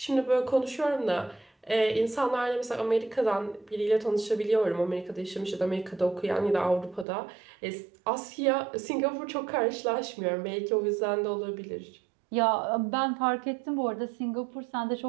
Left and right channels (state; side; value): drops out; left; at 7.1 s